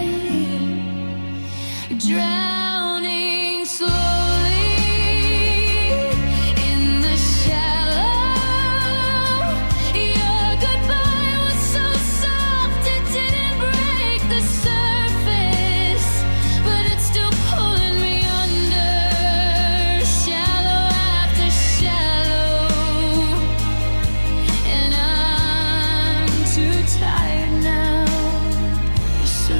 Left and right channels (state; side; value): inverted; both; correlation -1.00